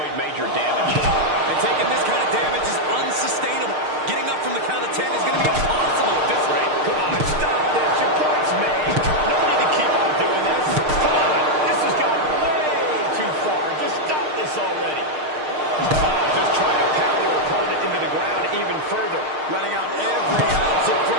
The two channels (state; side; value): late; left; 6.5 ms